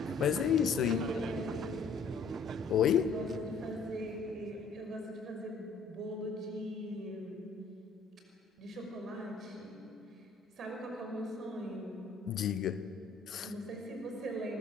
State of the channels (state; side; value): quieter; right; 4.5 dB